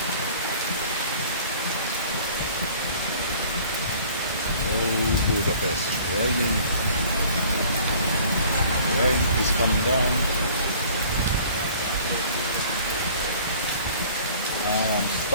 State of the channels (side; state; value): both; inverted; correlation -0.50